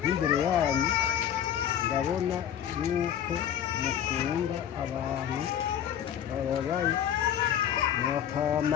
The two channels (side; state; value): right; quieter; 9.8 dB